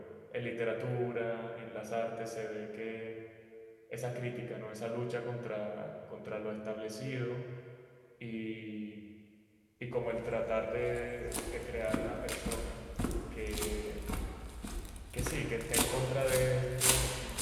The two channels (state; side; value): identical; both; correlation 1.00